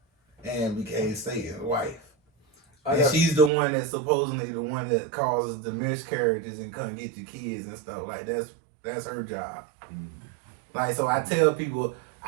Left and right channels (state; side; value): drops out; left; at 3.5 s